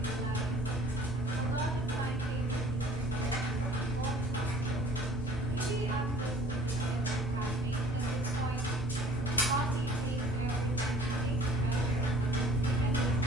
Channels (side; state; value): both; normal; correlation 0.51